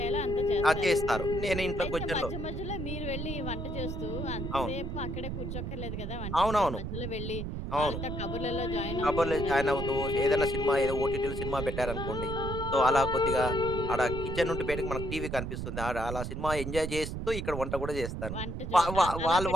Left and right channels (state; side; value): noise; right; rumble, 5 dB below the sound